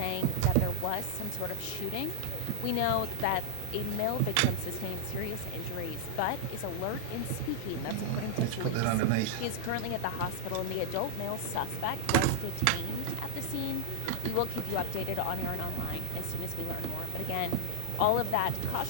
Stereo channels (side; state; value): both; different; correlation 0.00